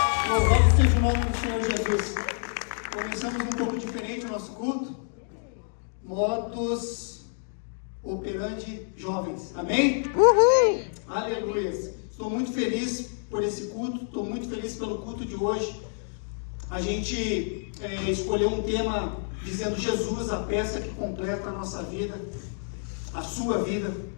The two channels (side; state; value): right; silent; digital silence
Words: Louvado seja o nome do Senhor Jesus. Começamos um pouco diferente o nosso culto. Modus operandi jovens. Amém? Uhul! Aleluia! Estou muito feliz por esse culto. Estou muito feliz pelo culto de hoje. A gente escolheu um tema dizendo Jesus, a peça que completa a nossa vida, a sua vida.